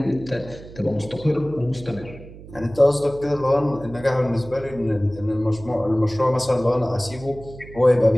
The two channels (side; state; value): right; noise; hum, 17 dB below the sound